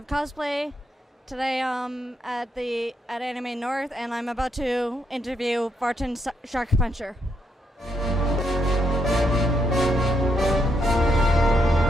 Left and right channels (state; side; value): normal; both; correlation 0.78